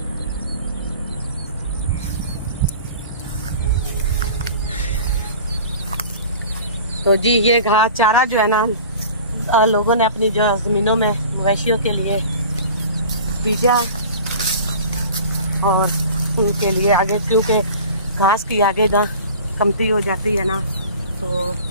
तो जी ये घास चारा जो है ना लोगों ने अपनी जो जमीनों में मवेशियों के लिए बीजा और उनके लिए आगे, क्योंकि घास की आगे ना कमती हो जाती है ना, तो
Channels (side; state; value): both; inverted; correlation -0.41